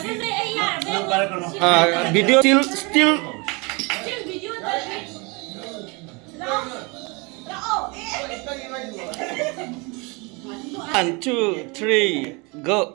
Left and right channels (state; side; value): quieter; left; 28.7 dB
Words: para ko no. Video still. One, two, three,